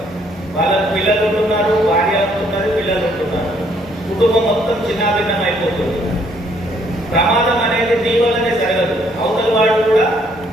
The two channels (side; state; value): both; normal; correlation 0.67